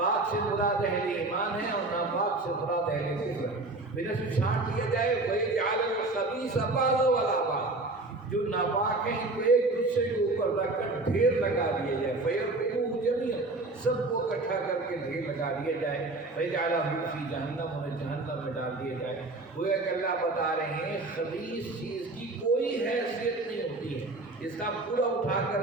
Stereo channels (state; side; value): quieter; left; 3.1 dB